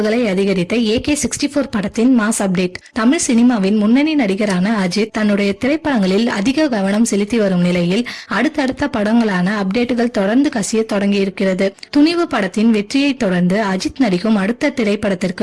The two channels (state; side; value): identical; both; correlation 1.00